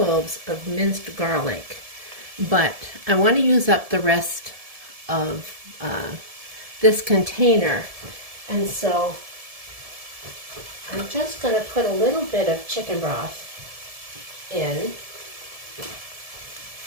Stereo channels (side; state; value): left; late; 1.7 ms